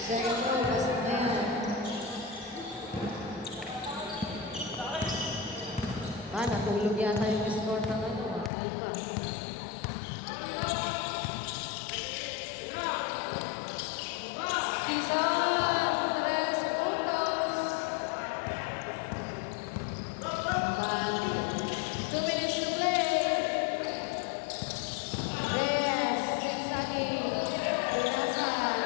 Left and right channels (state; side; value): drops out; right; at 8.5 s